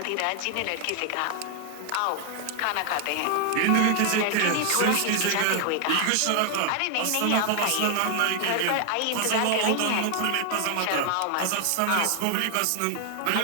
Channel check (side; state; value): both; different; correlation 0.00